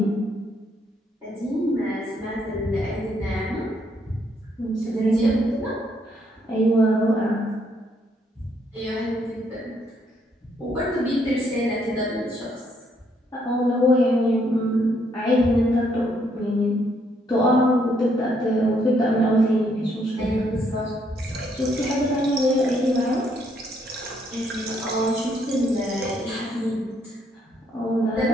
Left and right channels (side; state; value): both; normal; correlation 0.71